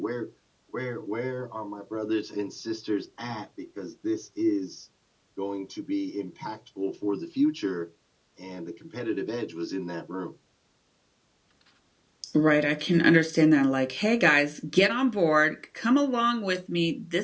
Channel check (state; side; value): identical; both; correlation 1.00